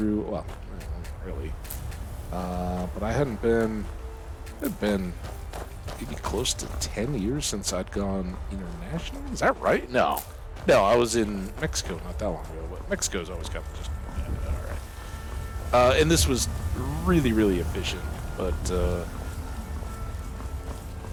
Well, not really, but I hadn't been maybe close to 10 years since I'd gone international. Is that right? No, I was in Mexico not that long ago. But Mexico's always kind of just all right. And this was really, really efficient, but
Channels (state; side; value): identical; both; correlation 1.00